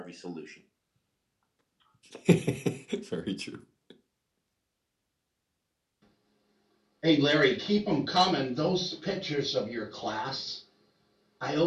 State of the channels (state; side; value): identical; both; correlation 1.00